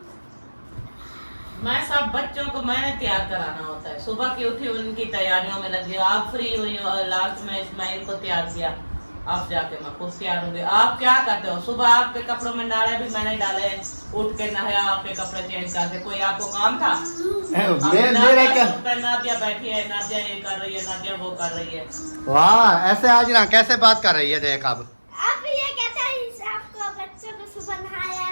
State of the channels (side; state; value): both; inverted; correlation -1.00